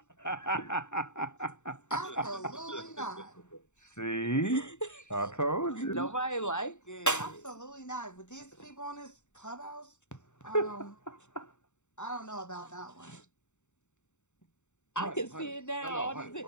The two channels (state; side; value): late; right; 0.84 ms